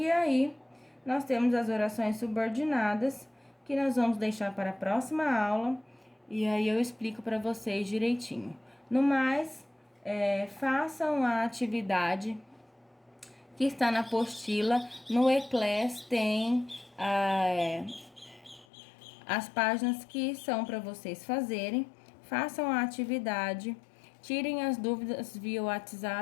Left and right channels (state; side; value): drops out; right; at 18.7 s